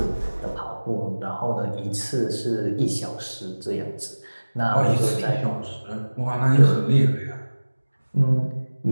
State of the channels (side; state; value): both; inverted; correlation -1.00